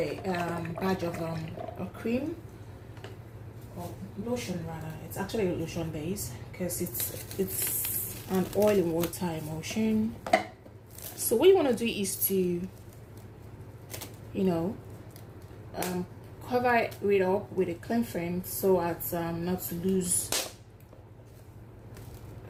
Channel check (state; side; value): identical; both; correlation 1.00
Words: of cream, or lotion rather. It's actually a lotion base because it's an oil and water emulsion. So what you want to do is to cover it up with a cling film so as not to lose,